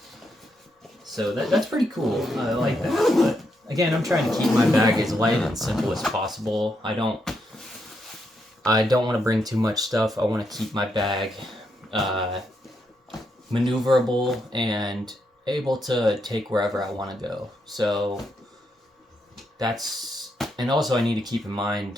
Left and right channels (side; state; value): both; normal; correlation 0.80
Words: So that's pretty cool. I like that. But again, I'm trying to keep my bag as light and simple as possible. I don't want to bring too much stuff. I want to keep my bag maneuverable and able to take wherever I want to go. So that's, and also I need to keep in